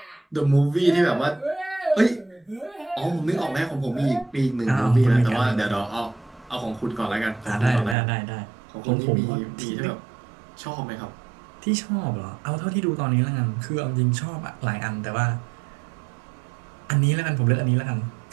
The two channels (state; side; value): drops out; left; at 8.0 s